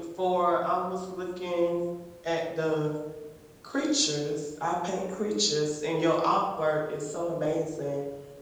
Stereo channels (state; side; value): identical; both; correlation 1.00